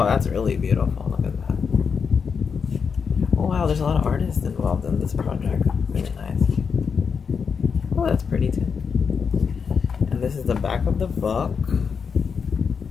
that's really beautiful. Look at that. Oh, wow, there's a lot of artists involved in this project. Really nice. Oh, that's pretty too. And this is the back of the book.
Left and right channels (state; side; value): quieter; right; 6.0 dB